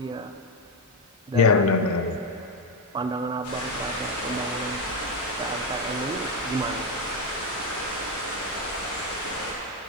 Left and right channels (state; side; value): normal; both; correlation 0.06